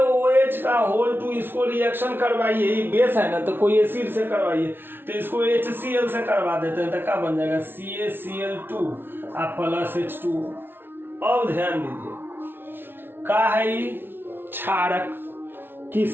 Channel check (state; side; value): late; left; 0.10 ms